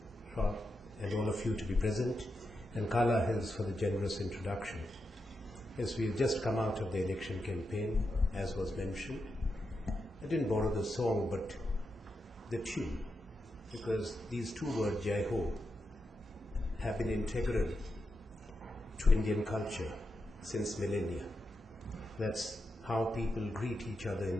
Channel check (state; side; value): normal; both; correlation 0.87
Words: Schwab and all of you to be present, and Carla Hills for the generous introduction. Yes, we have just come out of the election campaign, as was mentioned. I didn't borrow the song, but the tune, because these two words, Jai Ho, have been integral to Indian culture since millennia. That's how people greet each other